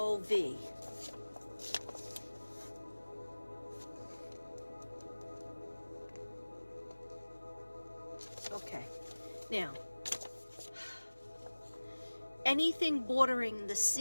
Okay, now, anything bordering the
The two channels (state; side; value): inverted; both; correlation -1.00